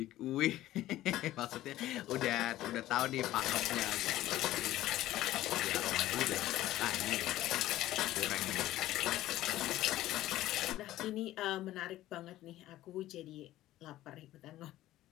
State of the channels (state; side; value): quieter; right; 14.9 dB